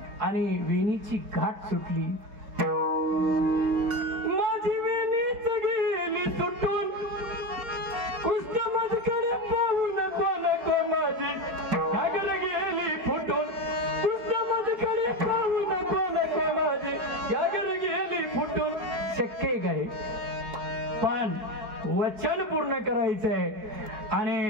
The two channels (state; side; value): late; left; 4.7 ms